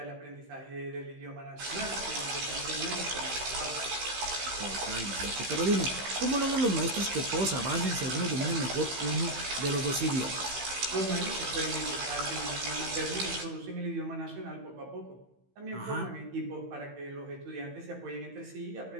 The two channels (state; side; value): late; left; 15 ms